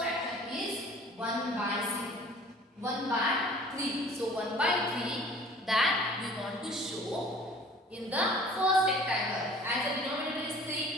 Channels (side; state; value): both; normal; correlation 0.49